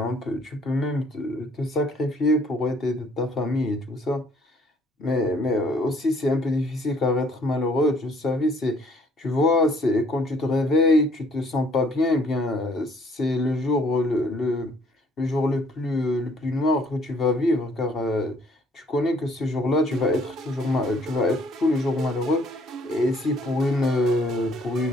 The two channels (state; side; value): normal; both; correlation 0.62